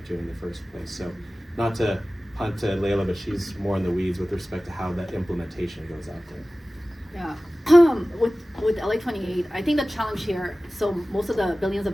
in the first place. So not to punt to Layla, but she's more in the weeds with respect to how that implementation goes out there. Yeah, with LA 28, I think the challenge here, so most of the billions of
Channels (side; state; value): both; normal; correlation 0.97